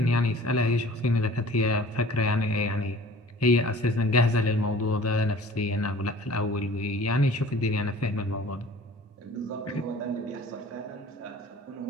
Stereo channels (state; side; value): normal; both; correlation 0.47